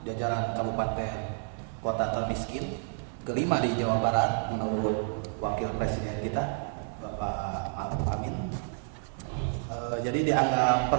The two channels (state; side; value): silent; left; 57 dB below the other